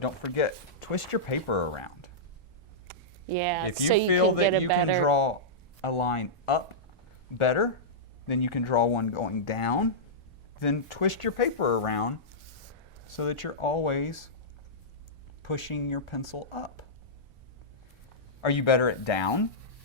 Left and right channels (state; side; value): normal; both; correlation -0.13